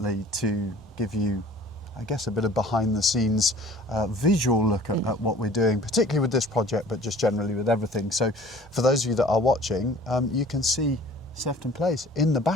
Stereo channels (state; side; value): normal; both; correlation 0.49